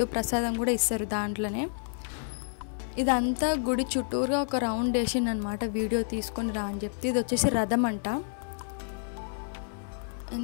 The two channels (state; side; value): silent; right; 55 dB below the other